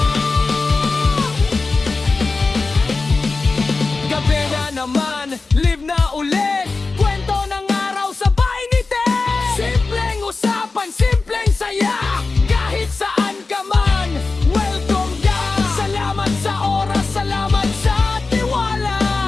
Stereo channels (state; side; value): quieter; right; 3.8 dB